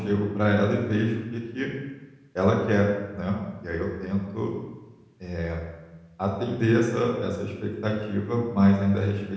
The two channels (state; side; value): identical; both; correlation 1.00